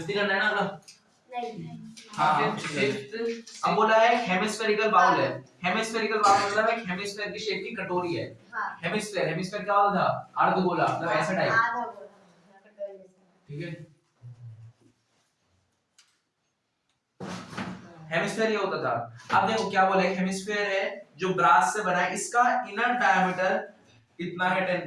करना है ना अगला? नहीं। हाँ, फिफ्थ अब बोला है हेमिस्फेरिकल बाउल है। हेमिस्फेरिकल बाउल मतलब एक हेमिस्फेयर की शेप की कटोरी है। हाँ। हेमिस्फेयर क्या होता था? अर्धगोला, मतलब ऐसा टाइप। आधा गोला कटोरी जैसा। ठीक है, हेमिस्फेयर ये होता था। अब देखो क्या बोला है, हेमिस्फेयर है जो ब्रास से बना है, इसका इनर डायमीटर कितना है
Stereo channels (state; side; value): identical; both; correlation 1.00